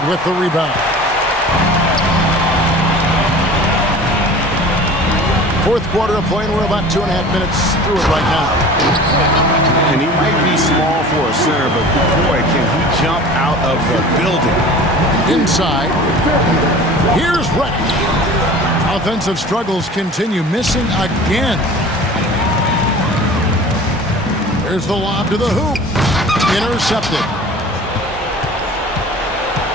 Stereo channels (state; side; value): normal; both; correlation 0.41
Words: with the rebound. Fourth quarter of play, and we're about 2.5 minutes through it right now. And he might be small for a center, but boy, can he jump out of the building. Inside. Here's Reddish. Offensive struggles continue, missing again. There's the lob to the hoop. Intercepted.